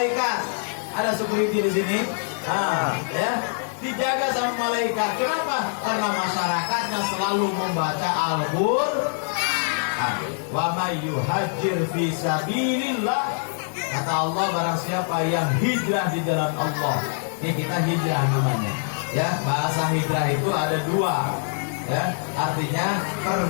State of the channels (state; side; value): silent; right; 61 dB below the other